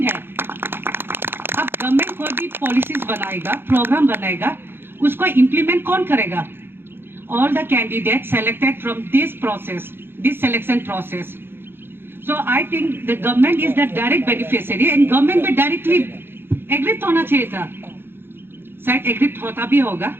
है। अब गवर्नमेंट कोई भी पॉलिसीज बनाएगा, प्रोग्राम बनाएगा, उसको इम्प्लीमेंट कौन करेगा? All the candidate selected from this process, this selection process. So I think the government is the direct beneficiary and government में डायरेक्टली एग्रिप्ट होना चाहिए था, शायद एग्रिप्ट होता भी होगा।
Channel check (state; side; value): late; left; 0.10 ms